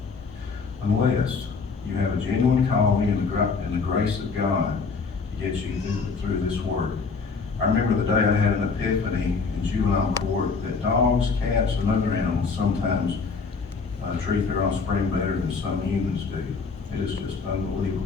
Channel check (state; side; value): quieter; right; 4.8 dB